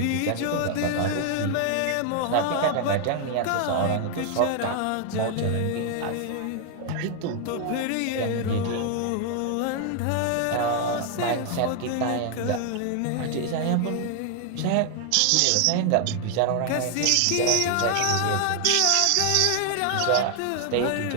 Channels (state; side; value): different; both; correlation 0.00